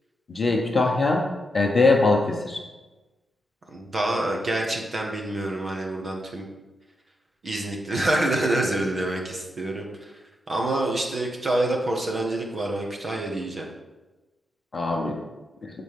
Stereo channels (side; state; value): both; normal; correlation 0.84